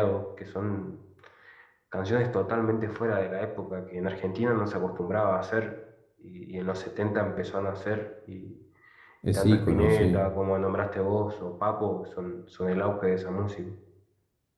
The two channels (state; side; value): identical; both; correlation 1.00